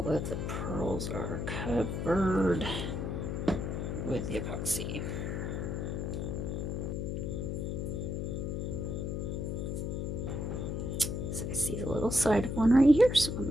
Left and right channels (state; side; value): noise; left; hum, 2 dB below the sound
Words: of the pearls are covered with the epoxy. So I see the little side of one right here, so I'm